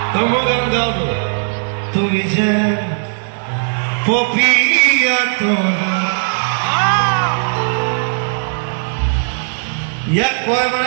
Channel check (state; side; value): silent; left; digital silence